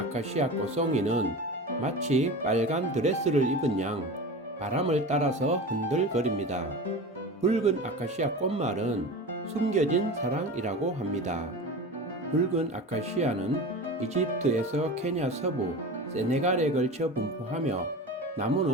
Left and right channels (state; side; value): normal; both; correlation 0.31